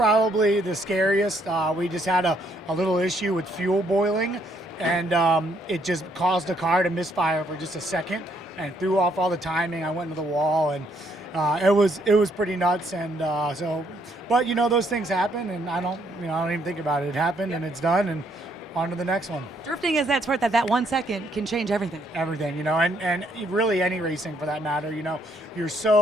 the scariest. We just had a little issue with fuel boiling, and it just caused the car to misfire for just a second and threw off all the timing. I went into the wall, and it was pretty nuts. And but those things happen, and I don't even think about it. It happened, and it's done, and on to the next one. Drifting is that sport that 1 second can change everything. Everything, and really any racing for that matter. You're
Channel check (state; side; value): normal; both; correlation 0.70